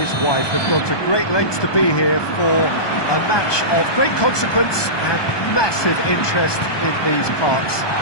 wife have gone to great lengths to be here for a match of great consequence and massive interest in these parts.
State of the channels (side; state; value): right; late; 1.2 ms